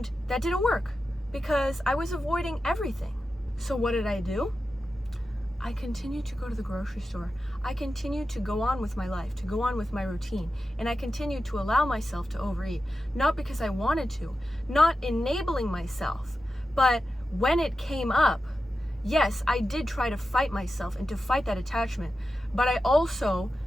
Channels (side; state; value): both; normal; correlation 0.91